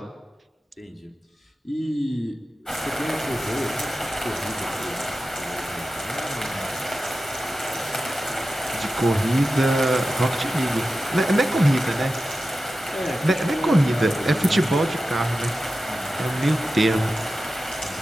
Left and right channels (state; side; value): normal; both; correlation 0.93